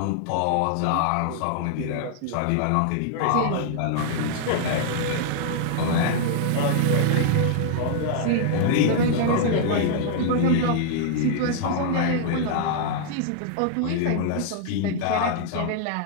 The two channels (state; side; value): different; both; correlation -0.01